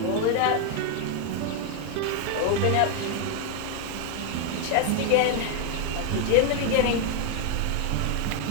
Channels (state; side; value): different; both; correlation 0.00